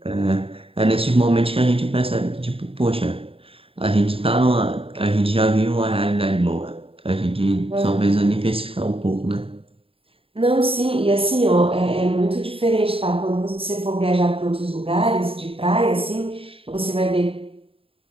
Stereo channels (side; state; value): left; late; 0.27 ms